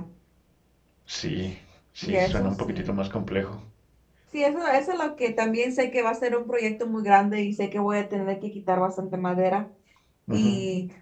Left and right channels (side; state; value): both; identical; correlation 1.00